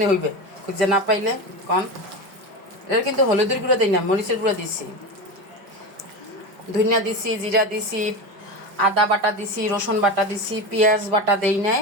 হইবে খুঁজে না পাইলে? কন এটা কিন্তু হলুদের গুঁড়ো দিই না, মরিচের গুঁড়ো দিছি, ধনিয়া দিছি, জিরা দিছি, আদা বাটা দিছি, রসুন বাটা দিছি, পেঁয়াজ বাটা দেই নাই।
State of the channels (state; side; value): late; left; 5.1 ms